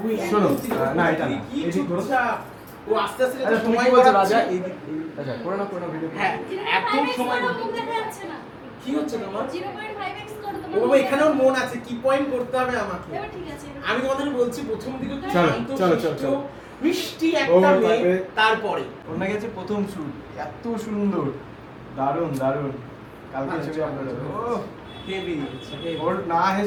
শোনো, না এটা না, কি এদিক ধরো। চুপচাপ। ও আস্তে আস্তে আচ্ছা তুমি কি বলছো রাজা? এই আচ্ছা করে না ভিডিও। হ্যাঁ এত সময় মুখ দেখা যাচ্ছে না। কি হচ্ছে তোমার? 0.5x করো ও তোমার। বাবা, এখানেও মন আছে, কি পয়েন্ট করতে হবে আমাকে। এবার ঠিক আছে। আমি তোমাদের বলছি প্রথম দিকে একটু চলো, শান্ত, চলো, শিষ্ট, চলো। মিষ্টি একটা ও, মেয়ে, তারপরে- তারপরে ওর নাকি আছে প্রথম শুট, এত সুন্দর, দারুণ দারুণ। কালকে ছবি আপলোড হবে। ও হেভি ওর না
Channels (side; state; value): both; identical; correlation 1.00